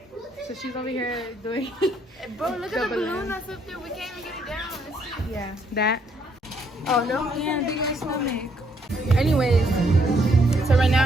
So she's over here doing. Bro, look at the balloon that's up there. We can't even get it down. Yeah, that. Oh no, yeah, big ass stomach. Anyways, so right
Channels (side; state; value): both; normal; correlation 0.70